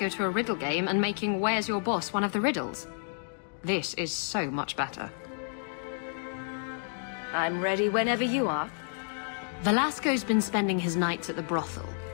to a riddle game and making Where's Your Boss one of the riddles. This is so much better. I'm ready whenever you are. Velasco's been spending his nights at the brothel,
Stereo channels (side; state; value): right; silent; digital silence